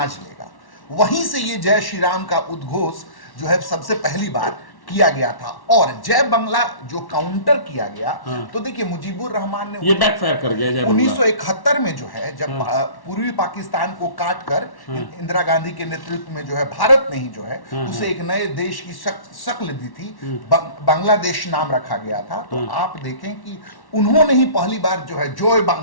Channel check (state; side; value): late; right; 1.1 ms